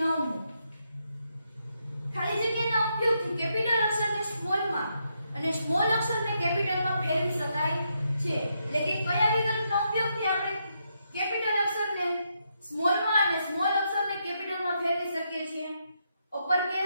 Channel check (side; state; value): both; inverted; correlation -0.80